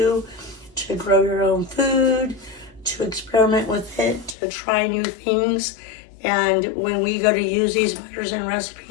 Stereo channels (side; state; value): right; drops out; at 4.4 s